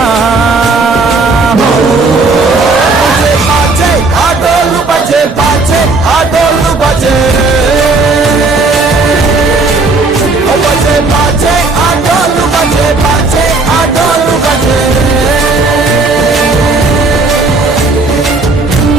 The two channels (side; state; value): left; quieter; 3.6 dB